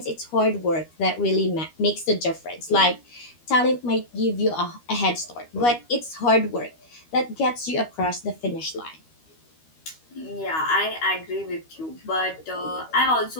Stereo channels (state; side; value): late; right; 13 ms